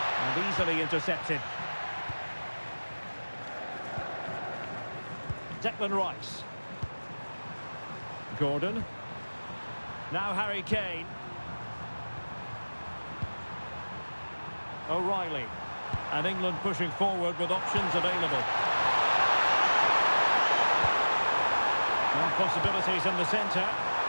And easily intercepted. Declan Rice. Gordon. Now Harry Kane. O'Reilly. And England pushing forward with options available. Well, possibilities in the centre.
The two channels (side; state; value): both; inverted; correlation -1.00